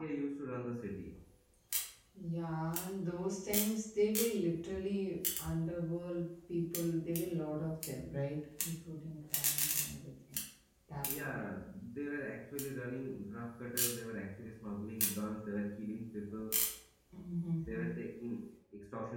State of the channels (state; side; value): identical; both; correlation 1.00